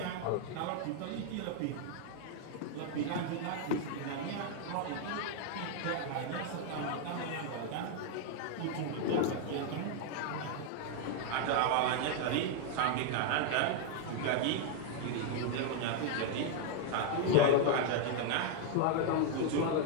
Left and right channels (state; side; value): different; both; correlation 0.00